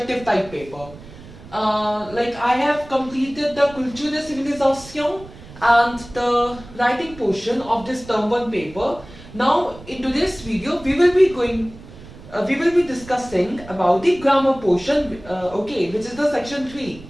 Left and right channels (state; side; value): noise; right; rumble, 18 dB below the sound